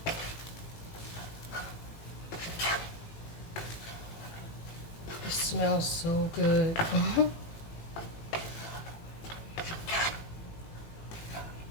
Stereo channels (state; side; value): late; right; 18 ms